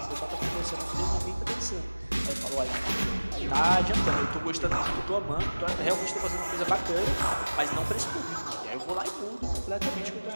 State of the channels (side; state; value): both; inverted; correlation -1.00